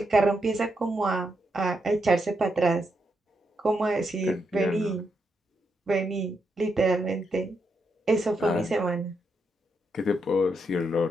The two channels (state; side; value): normal; both; correlation 0.81